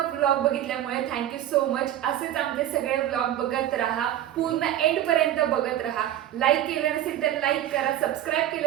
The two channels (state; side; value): quieter; left; 12.1 dB